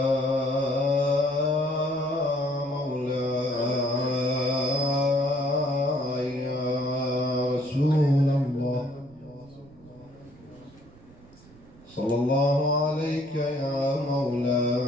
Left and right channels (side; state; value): right; noise; rumble, 24 dB below the sound